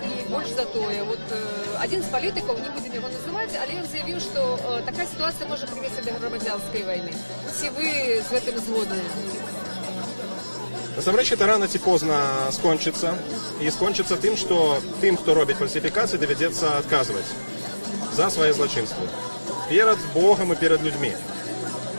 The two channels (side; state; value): both; inverted; correlation -1.00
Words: и больше за то. Один из политиков, не будем его называть, але он заявил, что такая ситуация может привести до громадянской войны. Все вы с этим згодны? Насамрэч, это рано ці позна скончыцца. І скончыцца тым, што тым, хто робіць фальсіфікацыі, давядзецца адказваць за свае злачынствы. Перад Богам і перад людзьмі.